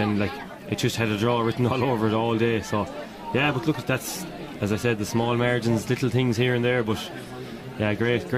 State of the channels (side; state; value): both; identical; correlation 1.00